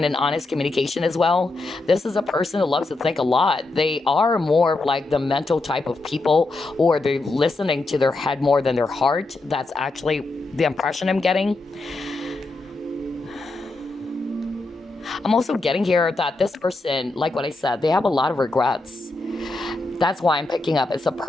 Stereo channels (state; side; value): quieter; right; 3.2 dB